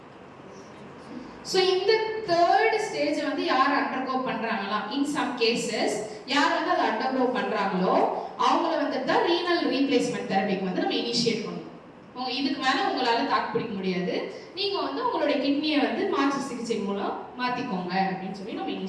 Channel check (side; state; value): both; identical; correlation 1.00